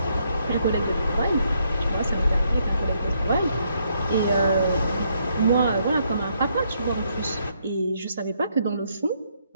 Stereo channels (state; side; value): inverted; both; correlation -0.73